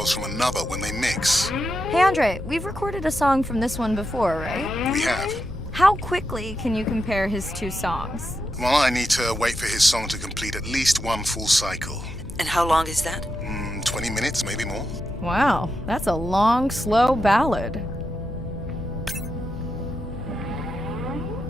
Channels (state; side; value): noise; left; hum, 14 dB below the sound